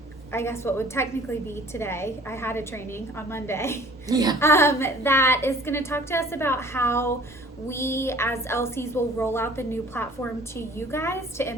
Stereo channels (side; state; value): both; normal; correlation 0.50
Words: I guess what would technically be today. I had a training on Monday. That is going to talk to us about how we as LCs will roll out the new platform to you guys to